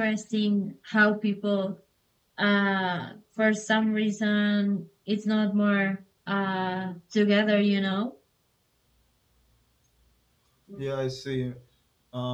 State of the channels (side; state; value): both; identical; correlation 1.00